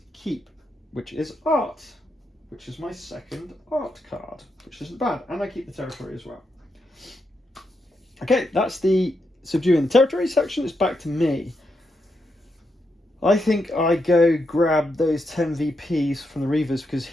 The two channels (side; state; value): both; normal; correlation 0.83